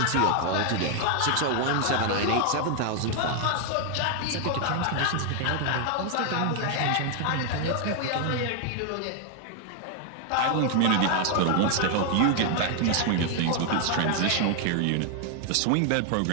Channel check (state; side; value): different; both; correlation 0.00